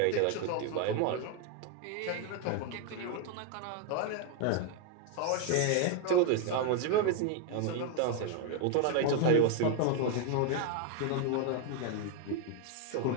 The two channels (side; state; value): both; different; correlation 0.01